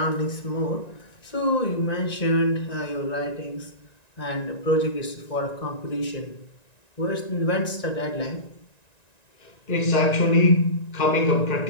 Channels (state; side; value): late; right; 1.9 ms